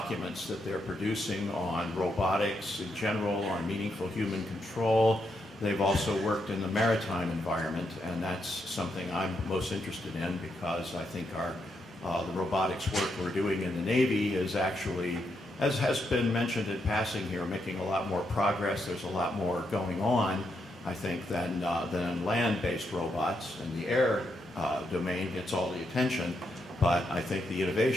that they're producing on robotics in general, on meaningful human control. They've also worked in the maritime environment, and that's something I'm most interested in because I think the robotics work we're doing in the Navy is actually, as has been mentioned in passing here, making a lot more progress. There's a lot more going on, I think, than land-based robots, and the air domain gets all the attention, but I think the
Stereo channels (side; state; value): both; normal; correlation 0.80